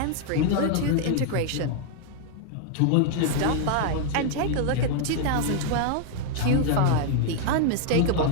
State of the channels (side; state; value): both; different; correlation 0.00